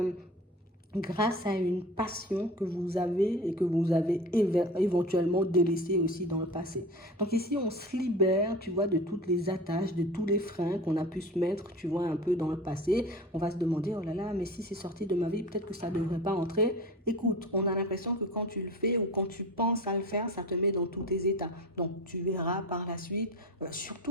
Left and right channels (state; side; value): normal; both; correlation 0.34